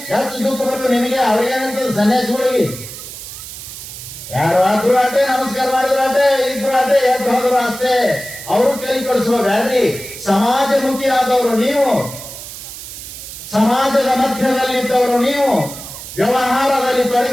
ಹೆಚ್ಚು ದುಃಖ ಬಂದು ನಿನಗೆ ಅವ್ರಿಗೇನಂತದ್ದು ಸನ್ಯಾಸಿಗಳಿಗೆ. ಯಾರು ಆದ್ರೂ ಆಟೆ, ನಮಸ್ಕಾರ ಮಾಡಿದ್ರು ಆಟೆ, ಇದ್ರು ಆಟೆ, ಎದ್ದು ಹೋದ್ರು ಅಷ್ಟೇ. ಅವರು ಕೈ ಕೊಡಿಸ್ಬೇಡ್ರಿ. ಸಮಾಜಮುಖಿ ಆದವರು ನೀವು, ಸಮಾಜದ ಮಧ್ಯದಲ್ಲಿದ್ದವರು ನೀವು, ವ್ಯವಹಾರದಲ್ಲಿ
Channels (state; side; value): noise; right; hiss, 12 dB below the sound